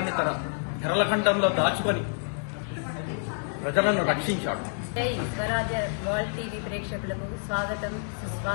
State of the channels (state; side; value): silent; right; digital silence